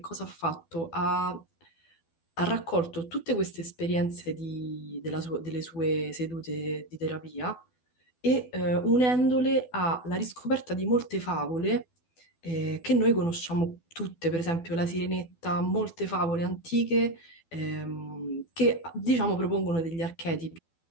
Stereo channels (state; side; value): late; right; 12 ms